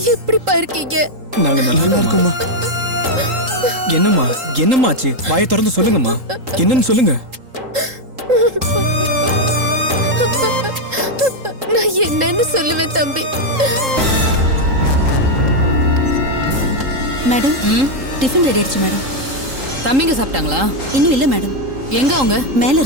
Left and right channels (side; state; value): left; late; 3.8 ms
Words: எப்படிப்பா இருக்கீங்க? நாங்க நல்லா இருக்கோம்மா. என்னம்மா என்னம்மாச்சு? வாயை திறந்து சொல்லுங்கம்மா. என்னன்னு சொல்லுங்க. நான் என்னன்னு சொல்லுவேன் தம்பி. மேடம் டிஃபன் ரெடி ஆயிடுச்சு மேடம். தம்பிங்க சாப்பிட்டாங்களா? இன்னும் இல்ல மேடம். எங்க அவங்க? மேல